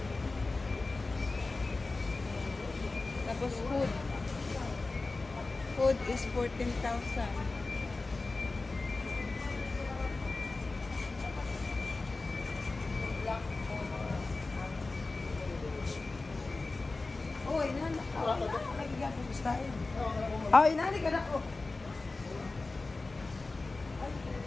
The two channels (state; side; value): quieter; right; 3.5 dB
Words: Tapos food. Food is 14,000. Oh, inanak ka. Oh, inanik ka na ko.